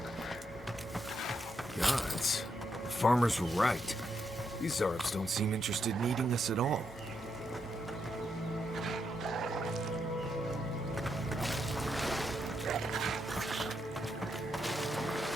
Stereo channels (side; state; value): both; normal; correlation 0.80